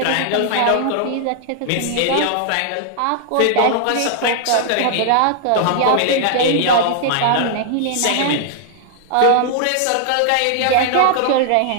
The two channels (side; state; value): both; different; correlation -0.01